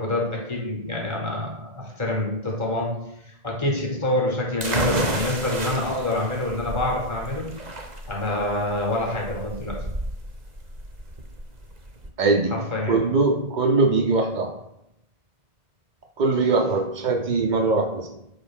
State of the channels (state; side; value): late; left; 2.0 ms